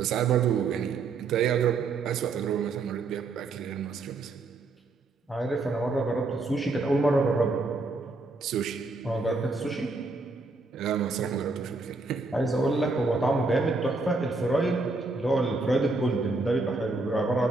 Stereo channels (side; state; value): left; quieter; 3.6 dB